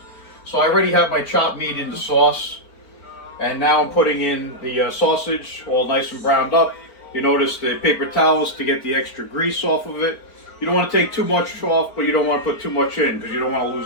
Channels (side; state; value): right; late; 4.4 ms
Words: So I already have my chopped meat in the sauce, and now I'm putting in the sausage, all nice and browned up. You notice the paper towels to get the extra grease off of it. You don't want to take too much off, but you don't want to put too much in because you don't want to